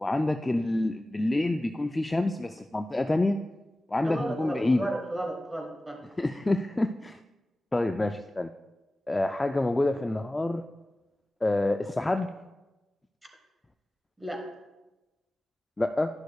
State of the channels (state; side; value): normal; both; correlation 0.96